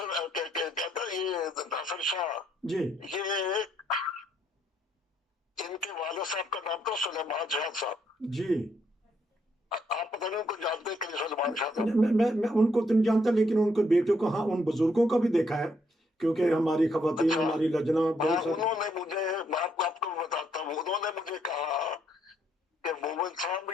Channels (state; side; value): normal; both; correlation 0.73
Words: कहता है, ये नासिर शाह, जी ये इनके वाले साहब का नाम था सुलेमान शाह साहब। जी। आप पता नहीं उनको जानते हैं कि नहीं सुलेमान शाह साहब? मैं उनको तो नहीं जानता, लेकिन उनके बेटों को, हाँ, उन बुजुर्गों का भी देखा है, क्योंकि हमारी खवातीन, अच्छा। हमारी लजना हाँ, बहुत सारी। उन्होंने मुझे, मैं आपको बताता हूँ, उन्होंने मुझे कहा कि मोमिन साहब,